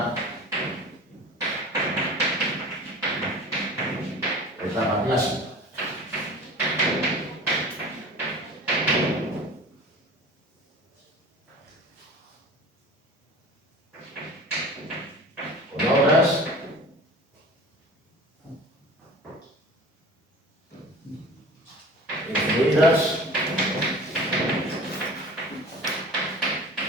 etapa clásica. Con obras influidas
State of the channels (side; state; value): both; normal; correlation 0.39